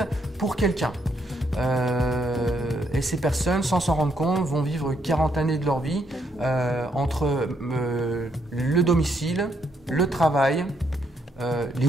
pour quelqu'un. Et ces personnes, sans s'en rendre compte, vont vivre 40 années de leur vie entre le domicile, le travail, les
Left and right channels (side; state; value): both; normal; correlation 0.74